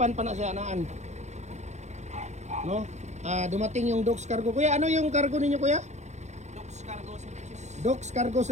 pa na sa anaan. No? Dumating yung Docs cargo. Kuya, ano yung cargo ninyo kuya? Docs Cargo Services. Docs Cargo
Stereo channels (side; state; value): left; late; 0.33 ms